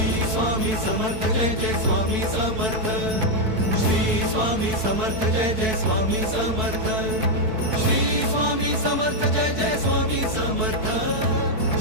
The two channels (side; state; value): left; late; 4.6 ms